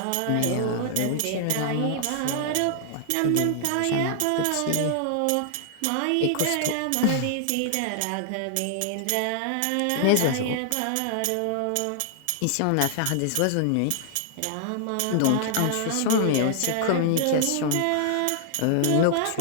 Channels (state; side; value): different; both; correlation 0.00